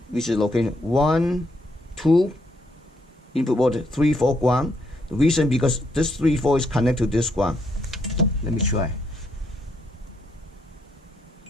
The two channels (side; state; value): both; normal; correlation 0.75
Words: which is location 1, 2, input voltage, 3, 4 ground. The reason because this 3, 4 is connected to this ground. Let me try.